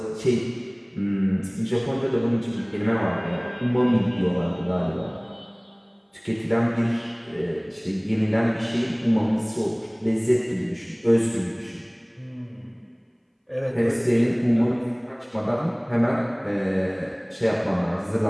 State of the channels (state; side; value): identical; both; correlation 1.00